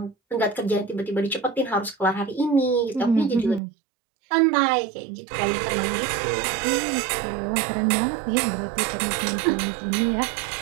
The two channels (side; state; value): left; drops out; at 3.6 s